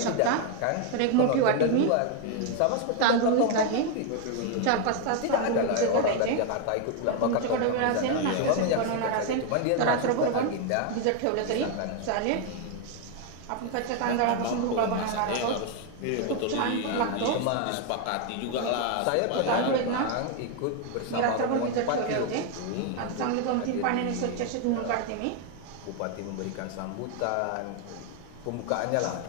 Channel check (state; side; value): different; both; correlation 0.00